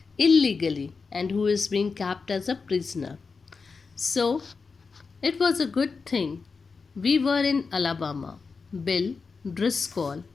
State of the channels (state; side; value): quieter; right; 4.8 dB